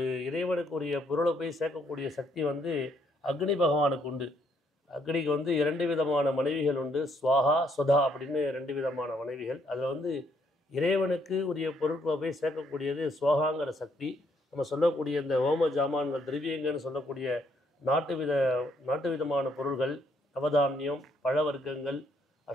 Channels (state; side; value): normal; both; correlation 0.71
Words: இறைவனுக்குரிய பொருளை போய் சேர்க்கக்கூடிய சக்தி அக்னி பகவானுக்கு உண்டு. அக்னிக்கு 2 விதமான மனைவிகள் உண்டு. ஸ்வாஹா ஸ்வதா அப்படின்னு 2 விதமான மனைவிகள். அதில் இறைவனுக்கு உரிய பொருட்களை போய் சேர்க்கக்கூடியது ஸ்வாகாங்கிற சக்தி. நம்ம சொல்லக்கூடிய இந்த ஹோம ஜாமான்கள் திரவியங்கள்னு சொல்லக்கூடிய நாட்டு விதமான பொருள்கள், நவதானியம், பழ வர்க்கங்கள்,